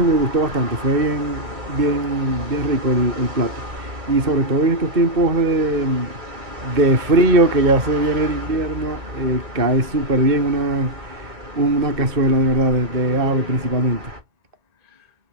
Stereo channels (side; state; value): left; late; 2.2 ms